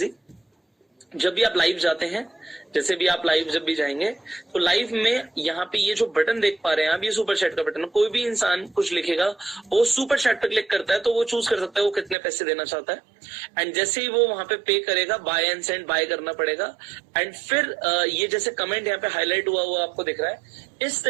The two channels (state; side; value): drops out; left; at 12.2 s